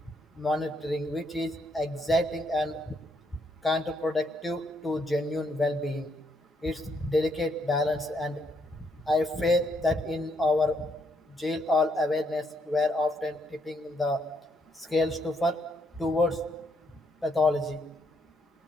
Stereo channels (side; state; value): both; normal; correlation 0.74